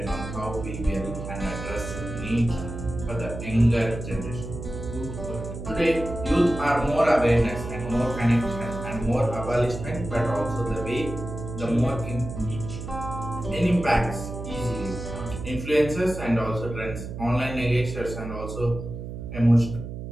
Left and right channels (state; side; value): noise; right; hum, 8 dB below the sound